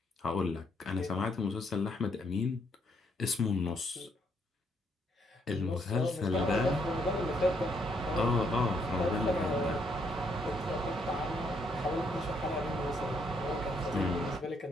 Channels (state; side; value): normal; both; correlation 0.72